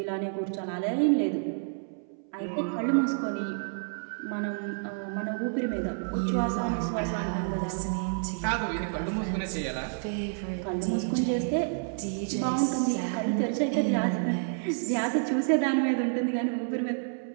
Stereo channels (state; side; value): silent; left; 58 dB below the other